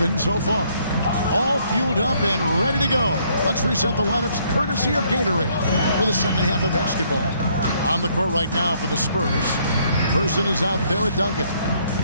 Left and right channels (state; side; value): inverted; both; correlation -0.67